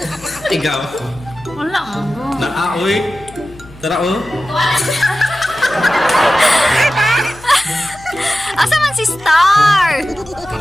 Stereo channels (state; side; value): noise; left; hum, 21 dB below the sound